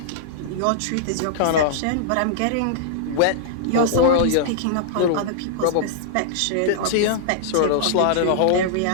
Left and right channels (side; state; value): both; different; correlation -0.02